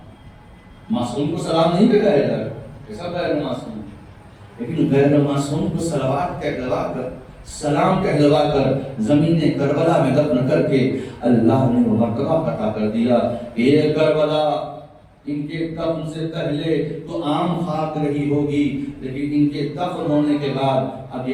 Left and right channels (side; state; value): both; identical; correlation 1.00